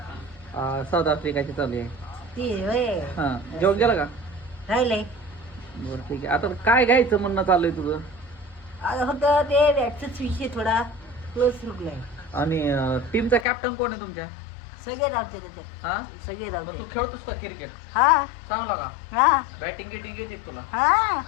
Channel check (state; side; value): drops out; right; at 13.5 s